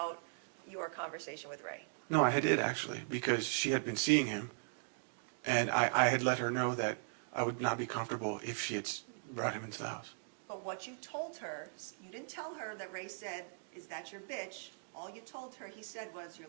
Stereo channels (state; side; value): silent; left; digital silence